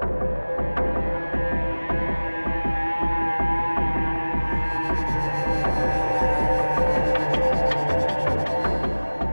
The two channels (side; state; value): both; inverted; correlation -1.00